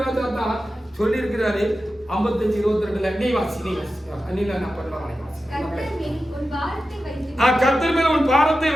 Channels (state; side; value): normal; both; correlation 0.93